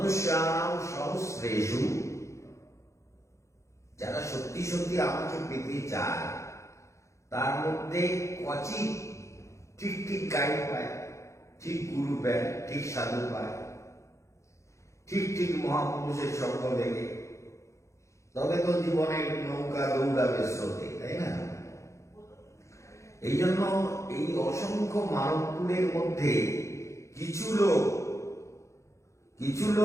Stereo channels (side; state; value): right; late; 0.14 ms